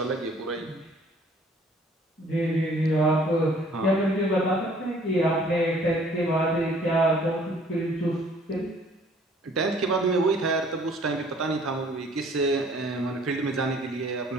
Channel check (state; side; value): normal; both; correlation 0.57